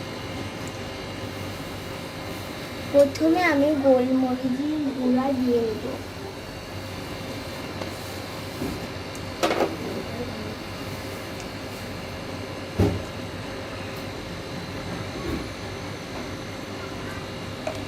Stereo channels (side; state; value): both; identical; correlation 1.00